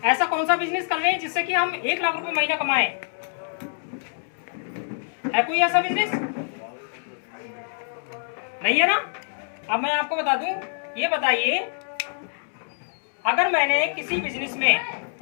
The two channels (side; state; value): right; silent; digital silence